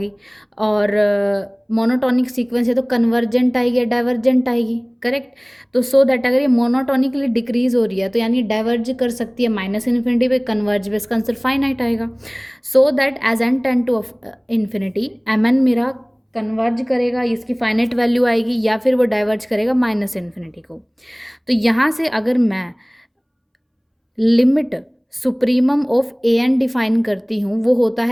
और मोनोटोनिक सीक्वेंस है तो कन्वर्जेंट आएगी या डाइवर्जेंट आएगी? करेक्ट। तो सो दैट अगर ये मोनोटोनिकली डिक्रीज हो रही है तो यानी डाइवर्ज कर सकती है माइनस इन्फिनिटी पे, कन्वर्ज पे इसका आंसर फाइनाइट आएगा। So that as N tend to infinity M N मेरा कन्वर्ज करेगा, इसकी फाइनाइट वैल्यू आएगी, या फिर वो डाइवर्ज करेगा माइनस इन्फिनिटी को। तो यहाँ से अगर मैं limit supremum of A N define करती हूँ, वो होता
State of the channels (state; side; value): identical; both; correlation 1.00